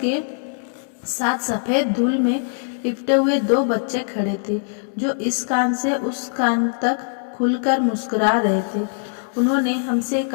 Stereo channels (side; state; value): right; silent; 64 dB below the other